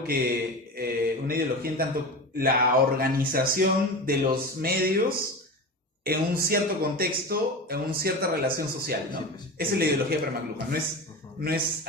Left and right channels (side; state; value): both; normal; correlation 0.27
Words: que una ideología en tanto la organización de los medios en un cierto contexto, en una cierta relación social, ¿no? Sí, pues. Esa es la ideología para McLuhan, no es